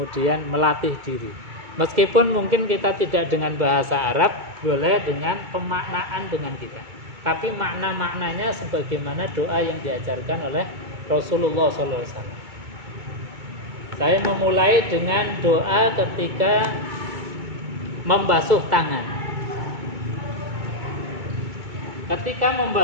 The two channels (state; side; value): late; left; 2.2 ms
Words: melatih diri. Meskipun mungkin kita tidak dengan bahasa Arab, boleh dengan pemaknaan dengan kita. Tapi makna-maknanya sebagaimana doa yang diajarkan oleh Rasulullah SAW. Saya memulai dengan doa ketika membasuh tangan. Ketika